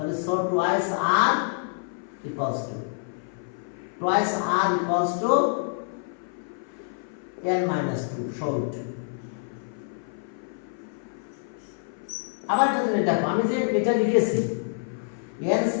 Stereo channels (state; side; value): silent; right; 56 dB below the other